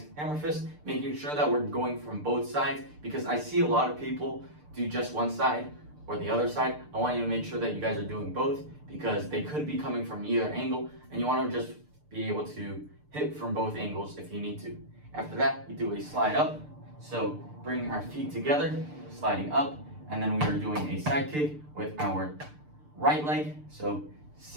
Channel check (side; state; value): left; late; 6.7 ms